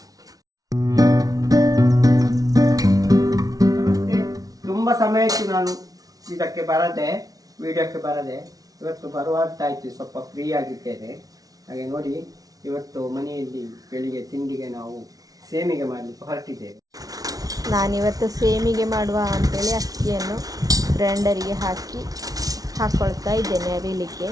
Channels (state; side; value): late; left; 0.18 ms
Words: ತುಂಬ ಸಮಯ ಆಯಿತು ನಾನು ಇದಕ್ಕೆ ಬರದೆ, ವಿಡಿಯೋಕ್ಕೆ ಬರದೆ. ಇವತ್ತು ಬರುವಂತಾಯಿತು, ಸ್ವಲ್ಪ ಫ್ರೀ ಆಗಿದ್ದೇನೆ. ಹಾಗೆ ನೋಡಿ, ಇವತ್ತು ಮನೆಯಲ್ಲಿ ಬೆಳಿಗ್ಗೆ ತಿಂಡಿಗೆ ನಾವು ಸೇಮಿಗೆ ಮಾಡಲಿಕ್ಕೆ ಹೊರಟಿದ್ದೇವೆ. ನಾನಿವತ್ತು ಸೇಮಿಗೆ ಮಾಡುವ ಅಂತೇಳಿ ಅಕ್ಕಿಯನ್ನು ಗ್ರೈಂಡರಿಗೆ ಹಾಕ್ಕೊಳ್ತಾ ಇದ್ದೇನೆ ಅರಿಲಿಕ್ಕೆ.